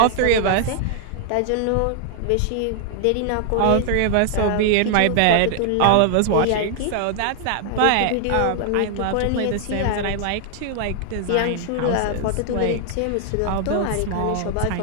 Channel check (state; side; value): different; both; correlation 0.00